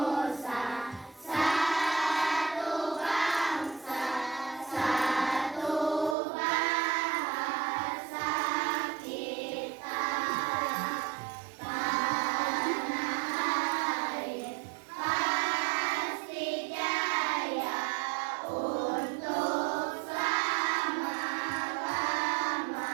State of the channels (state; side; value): drops out; left; at 6.2 s